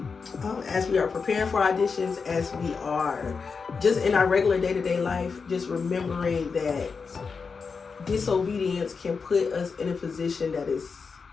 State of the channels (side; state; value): right; quieter; 5.2 dB